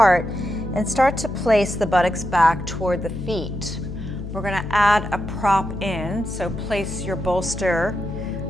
and start to place the buttocks back toward the feet. We're going to add a prop in, so place your bolster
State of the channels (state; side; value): noise; left; hum, 8 dB below the sound